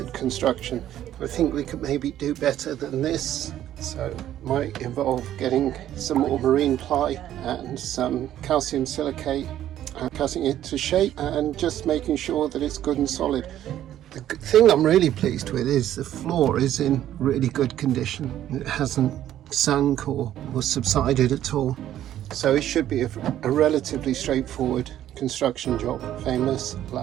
construction. I think we could maybe do better than this. So it might involve getting some more marine ply and some calcium silicate and cutting it to shape and just making sure that it's good and solid. The thing I'm really pleased with is the floor is in really good condition. It hasn't sunk or subsided at all. So it should be a relatively straightforward construction job. Famous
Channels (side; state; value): left; quieter; 12.0 dB